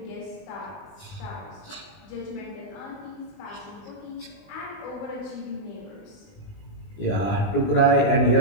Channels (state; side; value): late; right; 20 ms